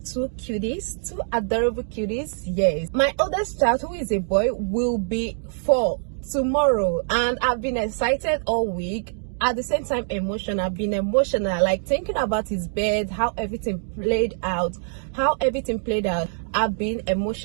two cuties, two adorable cuties. Yes, my oldest child, who is a boy, will be 4 tomorrow, and I've been excited all week. At the same time, emotional. I've been emotional, like thinking about his bed, how everything played out. I've been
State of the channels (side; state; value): left; silent; digital silence